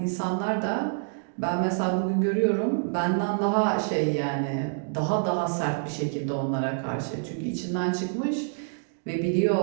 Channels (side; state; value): left; silent; digital silence